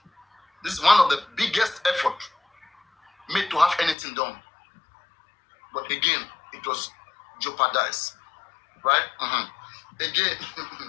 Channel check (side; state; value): right; drops out; at 4.0 s